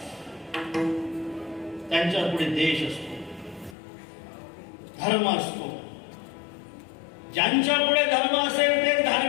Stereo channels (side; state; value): right; drops out; at 3.8 s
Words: त्यांच्या पुढे देश असतो, धर्म असतो. ज्यांच्या पुढे धर्म असेल ते